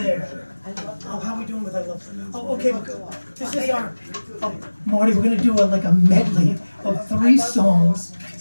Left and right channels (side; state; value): both; inverted; correlation -1.00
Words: Oh, how are we doing with I Love? Oh, okay. This is our. Oh, Marty, we're gonna do like a medley of 3 songs,